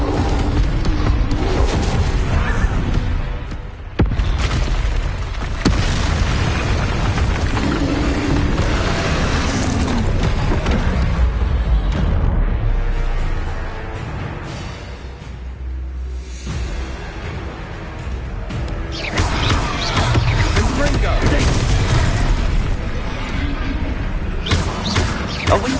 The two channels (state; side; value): identical; both; correlation 1.00